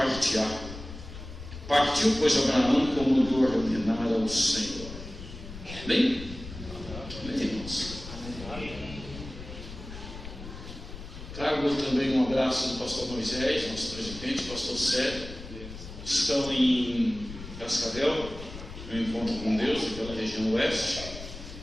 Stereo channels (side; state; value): left; noise; rumble, 12 dB below the sound